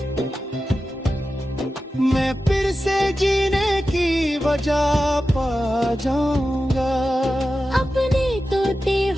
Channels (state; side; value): normal; both; correlation 0.92